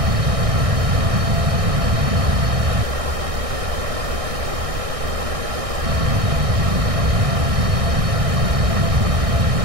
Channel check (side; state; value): left; late; 1.6 ms